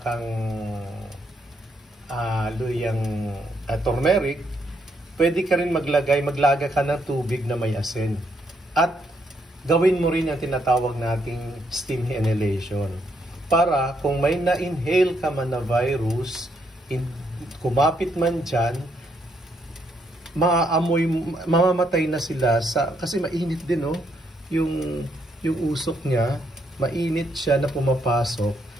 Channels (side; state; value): both; normal; correlation 0.74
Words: luyang turmeric, pwede ka rin maglaga ka ng tubig na may asin. At gawin mo rin yung tinatawag nating steam inhalation. Para kung may na-inhale ka man na virus, kumapit man dyan, mamamatay na sila kasi mainit din yung usok niya, mainit siya na pumapasok.